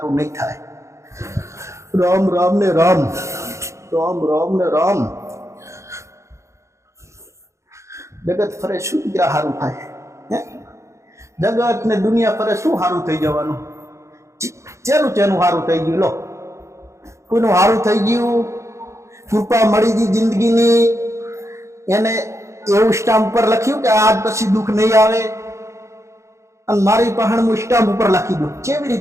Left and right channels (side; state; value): left; late; 0.14 ms